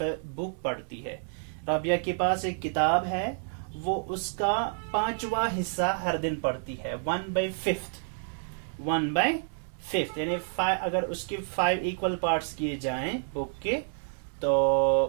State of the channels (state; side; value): silent; left; digital silence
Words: पढ़ती है। राबिया के पास एक किताब है, वो उसका 5वां हिस्सा हर दिन पढ़ती है, 1/5 यानी अगर उसके 5 इक्वल पार्ट्स किए जाएं बुक के,